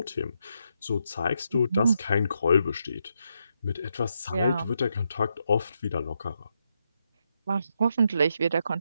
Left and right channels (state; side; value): inverted; both; correlation -0.81